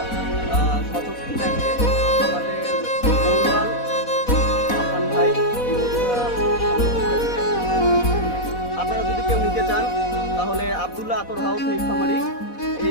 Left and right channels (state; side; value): late; right; 4.1 ms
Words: সচক্ষে দেখেন আমাদের মৌলাল আফান ভাই এই মধুটা। আপনারা যদি কেউ নিতে চান তাহলে আব্দুল্লাহ আতর হাউস নীলফামারী